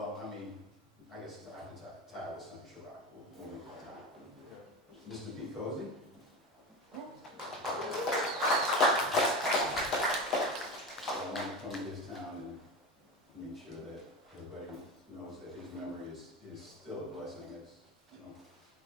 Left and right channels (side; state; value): both; normal; correlation 0.24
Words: I mean, I guess I can tie with some Sharrock. We'll make it tie. Mr. B. Cozy. I want to come to this town and make sure that everybody knows that his memory is still a blessing, as